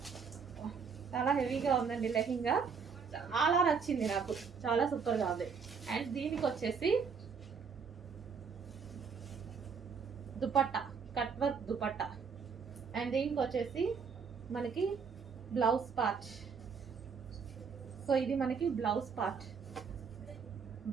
చాలా హెవీగా ఉందండి లెహెంగా, చాలా నచ్చింది నాకు, చాలా సూపర్గా ఉంది. అండ్ దీనికి వచ్చేసి dupatta, cut work dupatta. And దీనికి వచ్చేసి మనకి బ్లౌజ్ పార్ట్. సో ఇది మనకి బ్లౌజ్ పార్ట్,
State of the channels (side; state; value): left; quieter; 5.9 dB